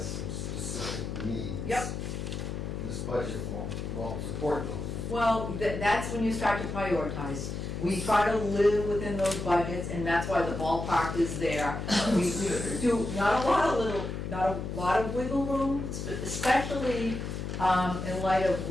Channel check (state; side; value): noise; left; hum, 5 dB below the sound